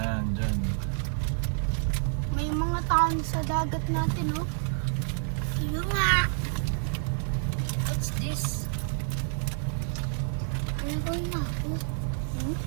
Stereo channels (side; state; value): left; silent; 55 dB below the other